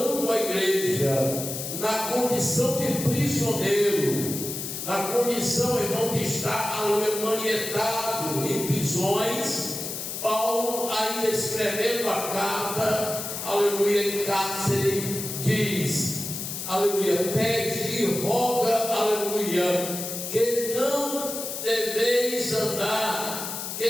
a igreja na condição de prisioneiro, na condição, irmão, de estar manietado em prisões. Paulo, ainda escrevendo a carta, aleluia, em cárcere, diz, aleluia, pede e roga, aleluia, que não deveis andar, que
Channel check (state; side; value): noise; left; hiss, 6 dB below the sound